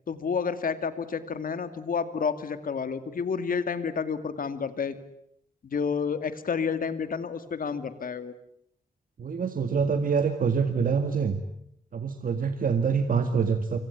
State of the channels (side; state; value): both; normal; correlation 0.48